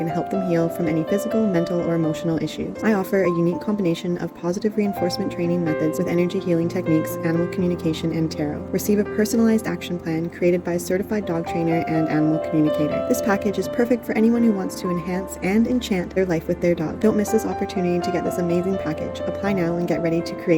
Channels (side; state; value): both; identical; correlation 1.00